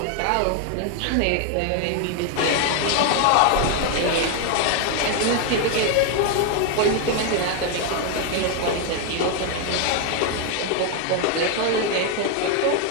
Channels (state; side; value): different; both; correlation 0.01